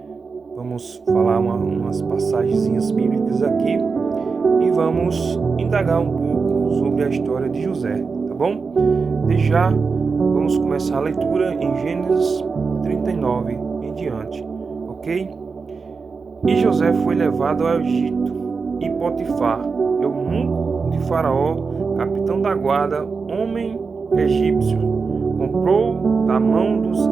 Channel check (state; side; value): quieter; left; 4.9 dB